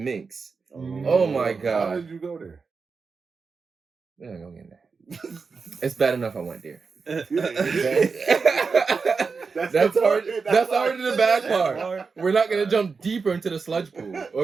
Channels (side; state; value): left; quieter; 4.9 dB